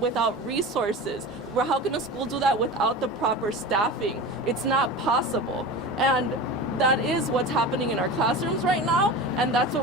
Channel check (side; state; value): both; normal; correlation 0.31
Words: resources? How can a school do that without the proper staffing? It's not possible. And that is what's happening in our classrooms right now, and that's